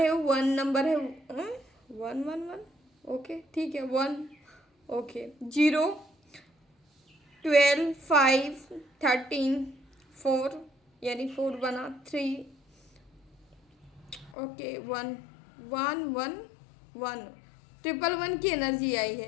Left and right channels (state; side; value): drops out; right; at 14.4 s